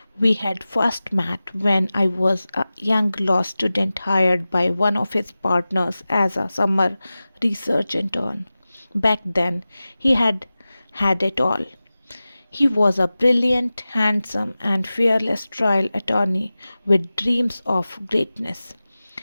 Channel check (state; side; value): inverted; both; correlation -0.96